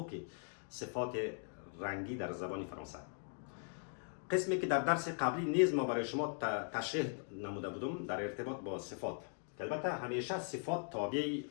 صفات رنگی در زبان فرانسه. قسمی که در درس قبلی نیز ما برای شما تشریح نموده بودم در ارتباط با صفات. که البته همیشه صفات تابع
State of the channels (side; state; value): right; silent; 51 dB below the other